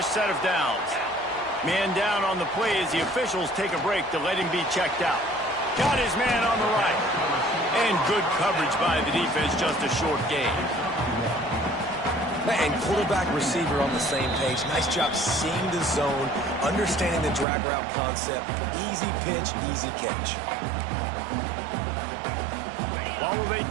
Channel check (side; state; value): left; drops out; at 17.4 s